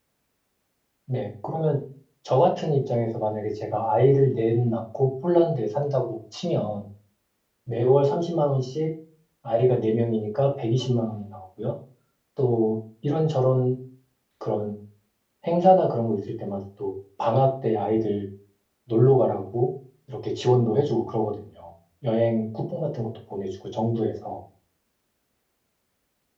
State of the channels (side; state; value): both; identical; correlation 1.00